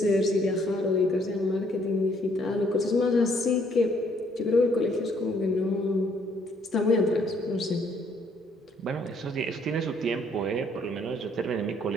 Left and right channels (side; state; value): both; normal; correlation 0.66